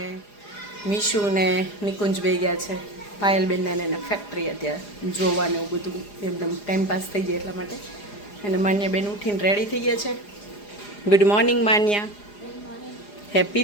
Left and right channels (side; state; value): right; late; 4.9 ms